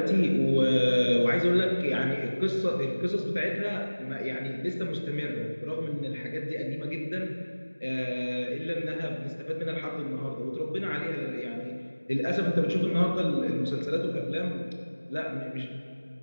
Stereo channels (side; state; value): both; inverted; correlation -1.00